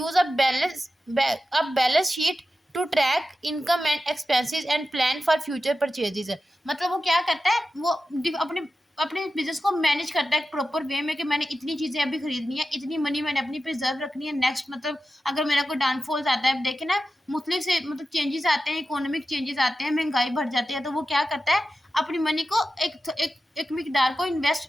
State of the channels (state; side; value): normal; both; correlation 0.92